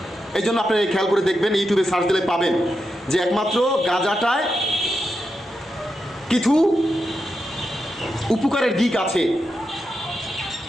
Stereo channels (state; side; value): normal; both; correlation 0.87